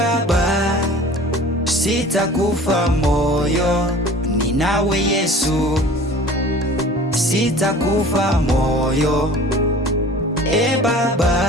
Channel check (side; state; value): both; normal; correlation 0.44